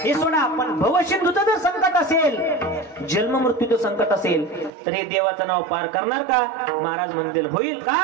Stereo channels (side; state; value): left; drops out; at 4.7 s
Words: हे सोडा. पण भवसिंधूचं जर संकट असेल, जन्म मृत्यूचं संकट असेल, तर हे देवाचं नाव पार करणार का. महाराज म्हणतील होईल का,